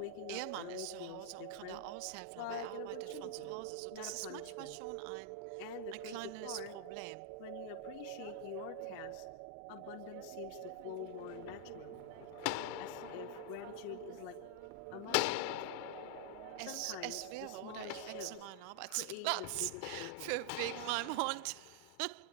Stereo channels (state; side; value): different; both; correlation 0.00